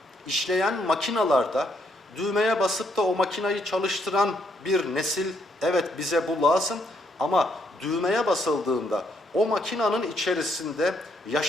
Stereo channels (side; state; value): both; normal; correlation 0.72